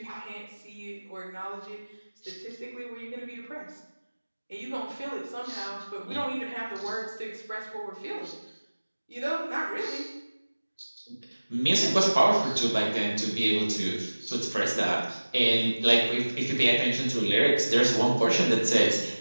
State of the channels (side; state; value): both; inverted; correlation -1.00